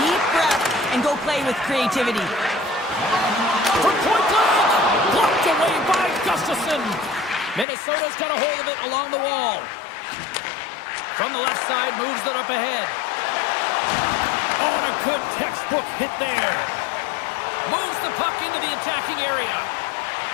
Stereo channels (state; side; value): drops out; right; at 7.7 s